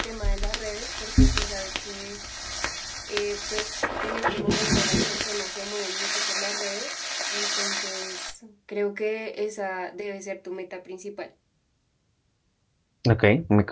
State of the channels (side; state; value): both; identical; correlation 1.00